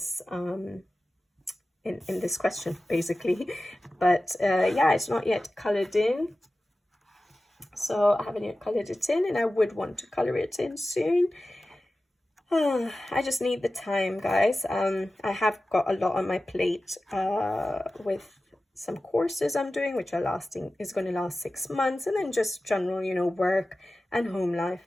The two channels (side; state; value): both; normal; correlation 0.95